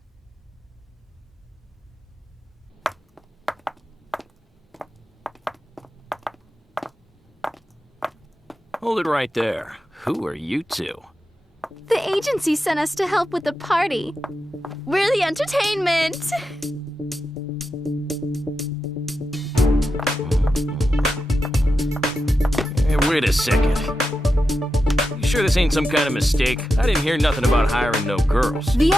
Hold it right there. Who are you two? The agency sent us to help with the party. We're the entertainment. Hey, wait a second. You sure this ain't some kind of mistake? I didn't hear nothing about hiring no girls. The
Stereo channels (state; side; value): normal; both; correlation 0.89